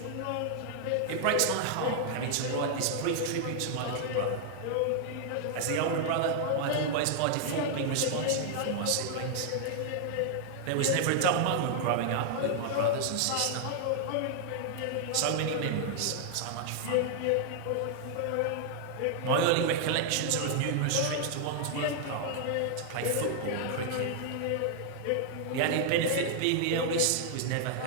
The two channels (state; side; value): different; both; correlation 0.00